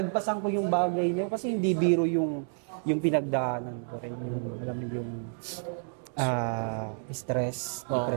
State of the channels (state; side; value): silent; left; digital silence